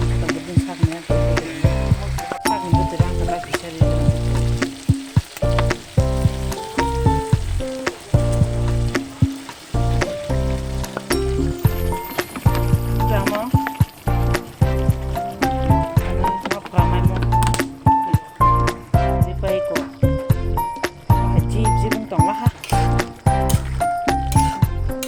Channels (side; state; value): both; identical; correlation 1.00